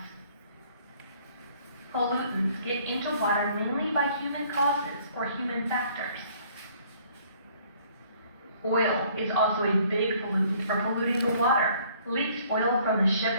Pollutants get into water mainly by human causes or human factors. Oil is also a big pollutant for polluting the water. Leaked oil from the ship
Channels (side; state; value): both; inverted; correlation -0.59